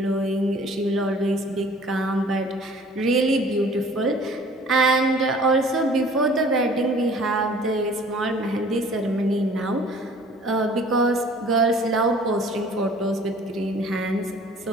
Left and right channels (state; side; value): normal; both; correlation 0.51